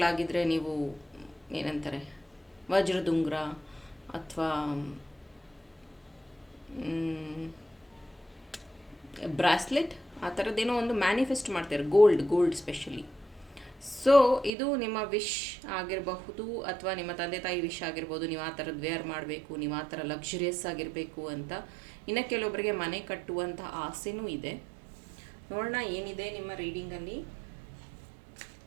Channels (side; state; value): left; drops out; at 14.5 s